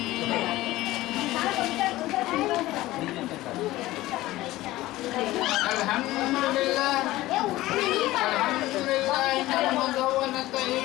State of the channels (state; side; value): quieter; right; 17.1 dB